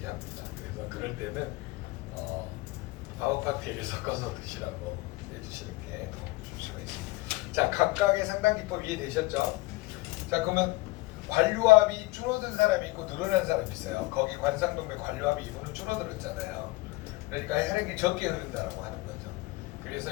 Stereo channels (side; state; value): right; quieter; 20.8 dB